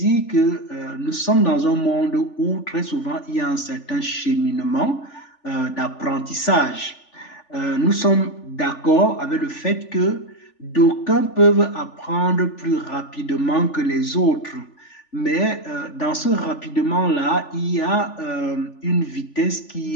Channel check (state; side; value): late; right; 3.4 ms